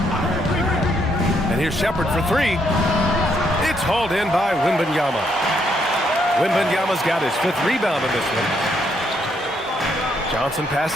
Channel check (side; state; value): both; normal; correlation 0.74